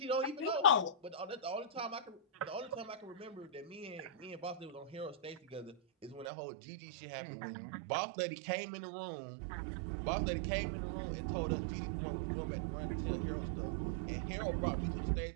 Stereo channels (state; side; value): drops out; left; at 6.2 s